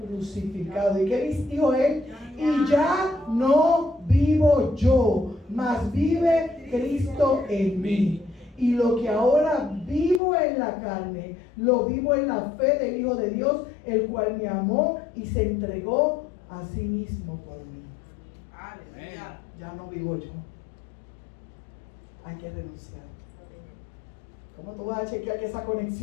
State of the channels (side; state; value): right; drops out; at 10.2 s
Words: crucificado. ¿Y qué dijo él? Y ya no vivo yo, mas vive Cristo en mí. Y lo que ahora vivo en la carne, lo vivo en la fe del Hijo de Dios, el cual me amó y se entregó a sí mismo por mí. Aleluya. Ya no vivo yo. Hay que renunciar. ¿Cómo tú vas a chequear que esa